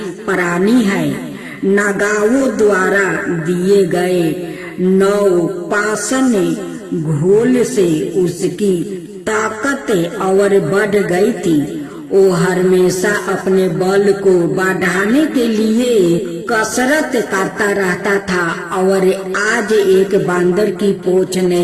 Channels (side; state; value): both; identical; correlation 1.00